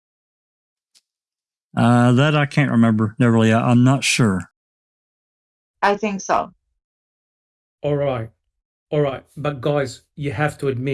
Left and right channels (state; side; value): identical; both; correlation 1.00